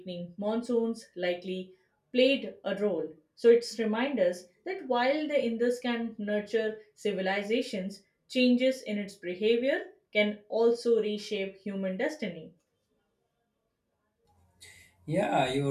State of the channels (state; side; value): identical; both; correlation 1.00